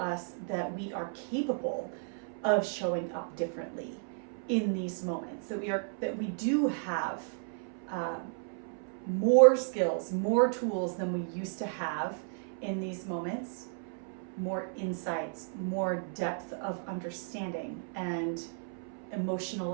that we are capable of showing up differently in these moments, that we do have more skills, more tools than we used to have in these moments, more insights, more depth of understanding and emotional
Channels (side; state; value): left; silent; 56 dB below the other